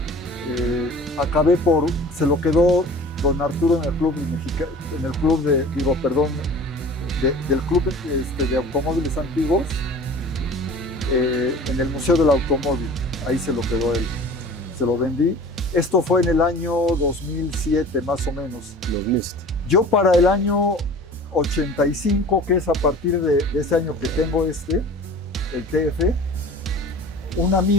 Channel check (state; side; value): normal; both; correlation 0.42